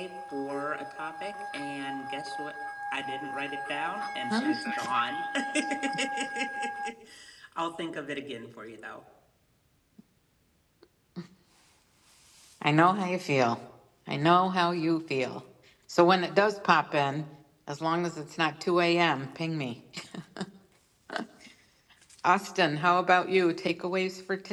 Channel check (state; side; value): identical; both; correlation 1.00